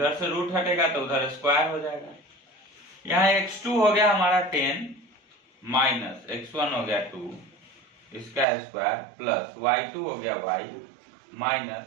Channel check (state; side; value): drops out; left; at 8.5 s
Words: से रूट हटेगा तो उधर स्क्वायर हो जाएगा। यहाँ x2 हो गया हमारा 10 माइनस x1 हो गया 2 इसका स्क्वायर प्लस y2 हो गया y माइनस